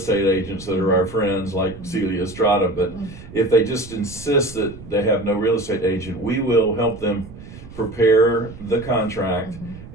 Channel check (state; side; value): noise; right; rumble, 16 dB below the sound